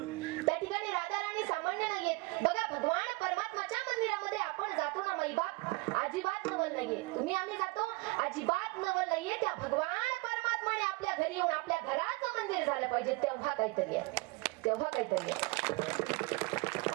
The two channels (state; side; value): quieter; left; 25.7 dB